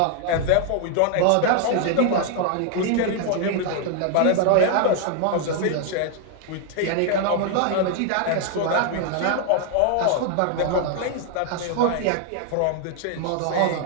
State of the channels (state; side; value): different; both; correlation 0.00